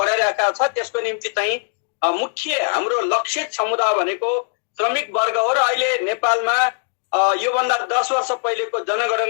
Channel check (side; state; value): right; silent; 63 dB below the other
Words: छ त्यसको निम्ति चाहिँ मुख्य हाम्रो लक्षित समुदाय भनेको श्रमिक वर्ग हो। र अहिले नेपालमा योभन्दा 10 वर्ष पहिलेको